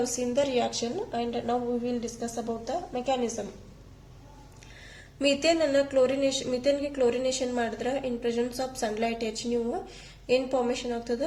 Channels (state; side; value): identical; both; correlation 1.00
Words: seen the reaction and now we will discuss about the mechanism. ಮೀಥೇನ್ಗೆ ಕ್ಲೋರಿನೇಷನ್ ಮಾಡಿದ್ರೆ ಇನ್ ಪ್ರೆಸೆನ್ಸ್ ಆಫ್ ಸನ್ಲೈಟ್ ನೀವು ಏನ್ ಫಾರ್ಮೇಶನ್ ಆಗ್ತದ